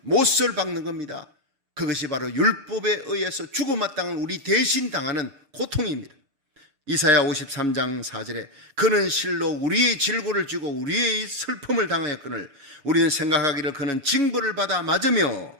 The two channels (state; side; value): late; left; 6.6 ms